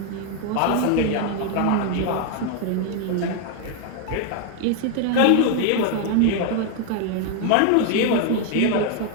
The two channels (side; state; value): both; different; correlation 0.00